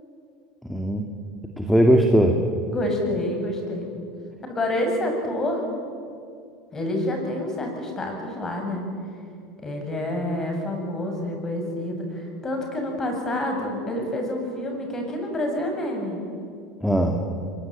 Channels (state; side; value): normal; both; correlation 0.60